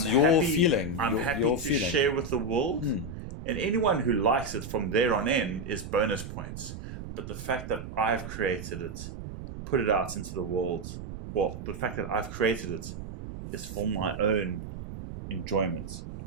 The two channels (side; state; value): right; noise; rumble, 10 dB below the sound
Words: I'm your happy, feeling. I'm your, happy your to feeling. share with the world. Mm. And anyone who likes it from there on in is bonus points. But the fact that I've created it, put it out into the world, well, the fact that I've created it is for my own enjoyment.